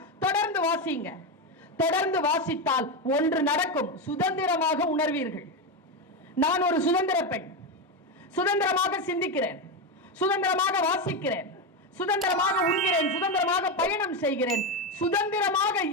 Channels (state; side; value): normal; both; correlation 0.12